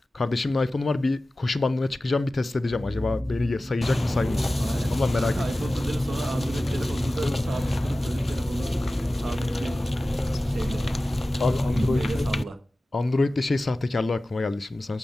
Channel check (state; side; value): normal; both; correlation 0.96